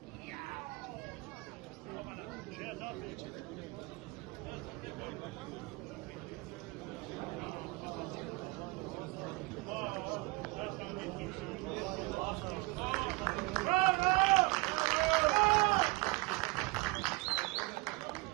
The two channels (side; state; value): left; quieter; 24.4 dB